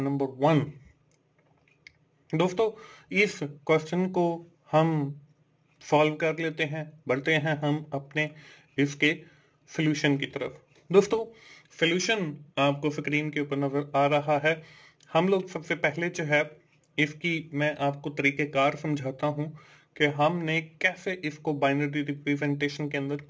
नंबर 1। दोस्तों, इस क्वेश्चन को हम सॉल्व कर लेते हैं। बढ़ते हैं हम अपने इसके सॉल्यूशन की तरफ। दोस्तों, सॉल्यूशन आपको स्क्रीन के ऊपर नजर आ रहा है। हम लोग सबसे पहले जो है इसकी मैं आपको तरीकेकार समझाता हूं कि हमने कैसे इसको बाइनरी रिप्रेजेंटेशन के अंदर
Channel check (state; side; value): identical; both; correlation 1.00